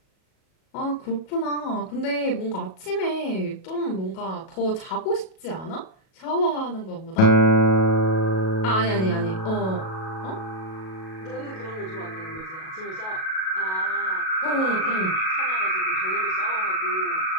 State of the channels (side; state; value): right; late; 37 ms